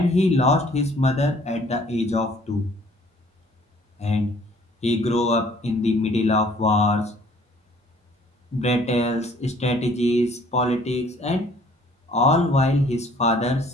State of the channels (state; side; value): normal; both; correlation 0.57